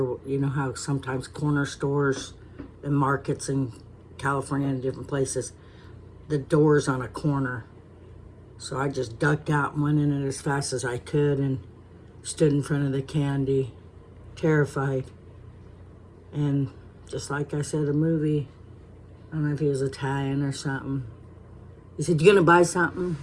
you know how sometimes corner stores and markets in California and different places, the door's on a corner. So I just ducked out and went in it as fast as I could and stood in front of the candy, terrified. And just like I said, a movie, I don't know if he was Italian or something. He said, "You gonna buy something?"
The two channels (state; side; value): identical; both; correlation 1.00